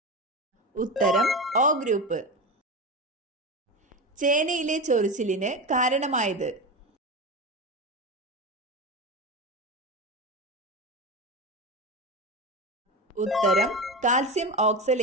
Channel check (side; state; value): both; normal; correlation 0.22